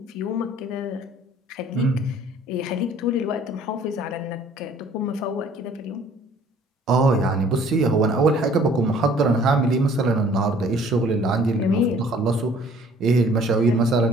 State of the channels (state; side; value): normal; both; correlation 0.55